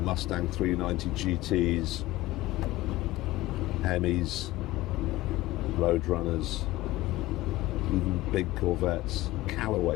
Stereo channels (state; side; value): quieter; right; 17.6 dB